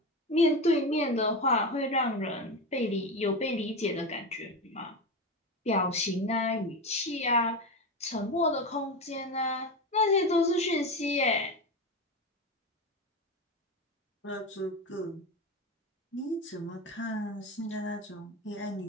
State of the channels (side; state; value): both; normal; correlation 0.20